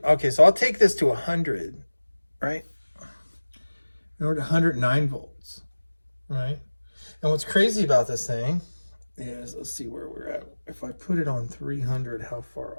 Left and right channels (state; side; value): inverted; both; correlation -1.00